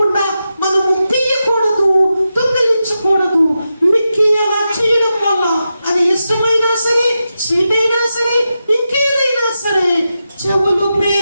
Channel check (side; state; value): both; inverted; correlation -0.89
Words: మనము తీయకూడదు, దొంగిలించకూడదు. మిక్కి అలా చేయడం వల్ల అది ఇష్టమైనా సరే, స్వీట్ అయినా సరే, ఇంకేదైనా సరే చెవులు